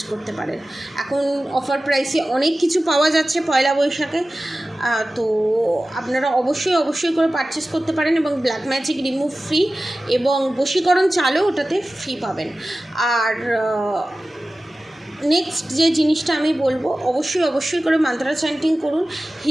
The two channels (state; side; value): normal; both; correlation 0.96